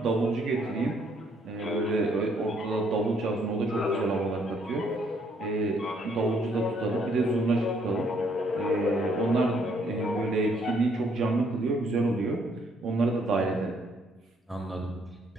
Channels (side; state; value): both; normal; correlation 0.68